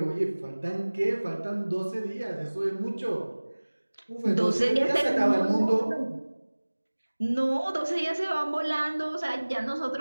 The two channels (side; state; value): both; inverted; correlation -1.00